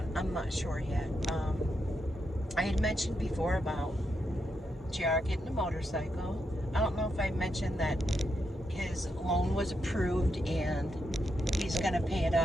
I'm not sure yet. I had mentioned before about JR getting a motorcycle. I don't know if I mentioned that his loan was approved and he's going to pay it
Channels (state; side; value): normal; both; correlation 0.83